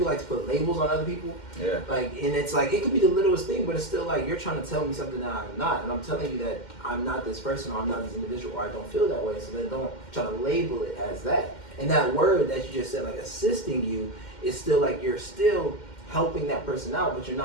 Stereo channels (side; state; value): right; late; 2.1 ms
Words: like to put labels on other people? Like, and it's like, it could be the littlest thing, but it's still like, you're trying to tell me something that I'm not. And I'm telling you that I'm not this person, or I'm not this individual, or I don't feel that way. So then don't try to label it as that. And that word that you just said, like assisting you, is still like, you're still helping that person out, but you're